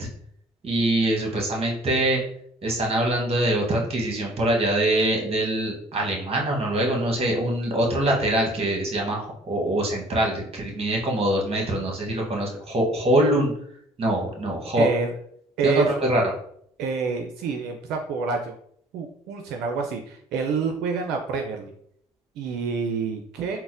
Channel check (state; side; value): normal; both; correlation 0.53